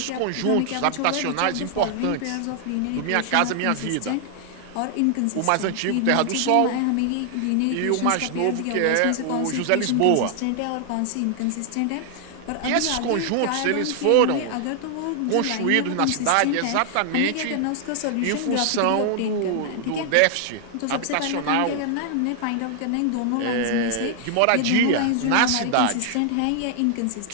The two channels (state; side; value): different; both; correlation 0.00